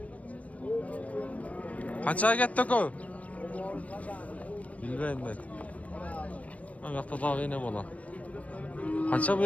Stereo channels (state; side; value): late; right; 0.067 ms